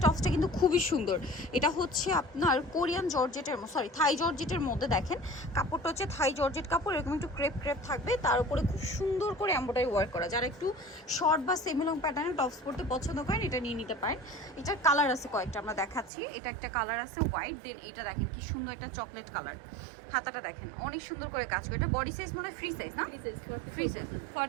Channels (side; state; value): left; drops out; at 16.1 s